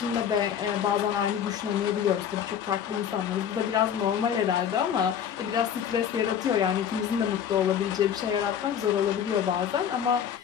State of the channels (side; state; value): right; quieter; 8.7 dB